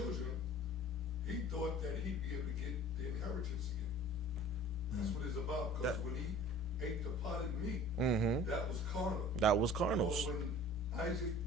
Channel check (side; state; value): both; normal; correlation 0.46